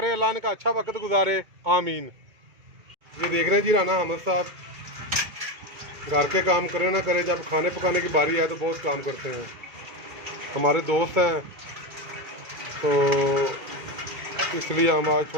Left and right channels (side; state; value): left; late; 2.2 ms